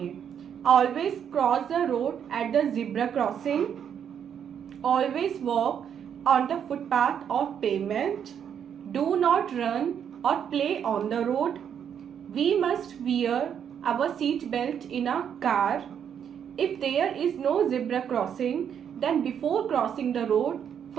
Always cross the road at the zebra crossing, always walk on the footpath of pavement, do not run और play on the road, we must wear our seat belt in a car. If there is no zebra crossing, then before crossing the road,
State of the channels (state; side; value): quieter; left; 8.3 dB